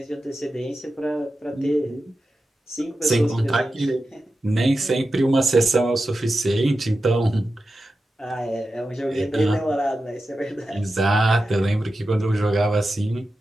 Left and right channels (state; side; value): normal; both; correlation 0.92